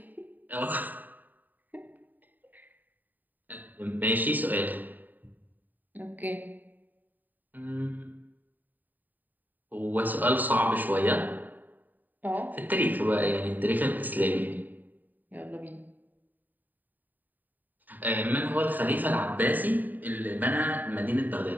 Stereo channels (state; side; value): late; left; 0.087 ms